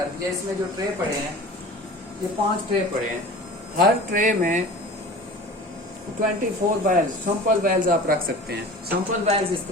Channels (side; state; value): both; normal; correlation 0.39